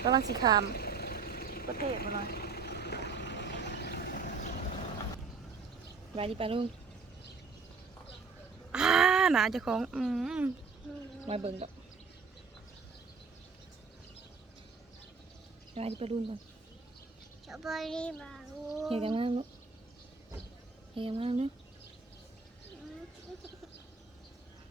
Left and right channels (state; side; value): quieter; left; 4.9 dB